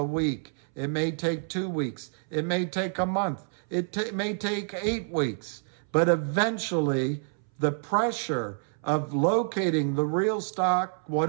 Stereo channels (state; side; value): silent; left; 59 dB below the other